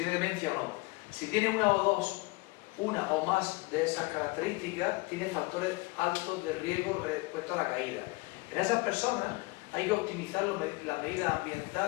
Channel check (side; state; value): right; quieter; 25.0 dB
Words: demencia o no. Si tiene una o más de esas características, tiene factores altos de riesgo respecto a la caída. En esas personas hay que optimizar las medidas